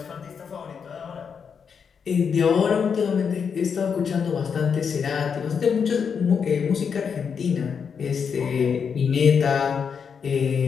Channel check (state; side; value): quieter; right; 6.5 dB